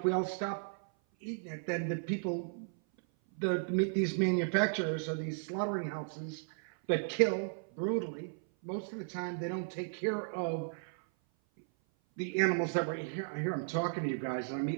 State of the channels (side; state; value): left; silent; 55 dB below the other